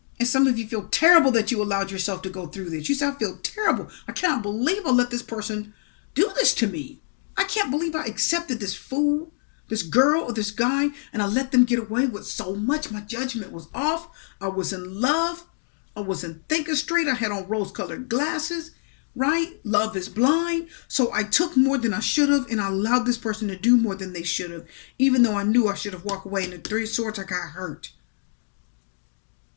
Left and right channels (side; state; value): right; silent; digital silence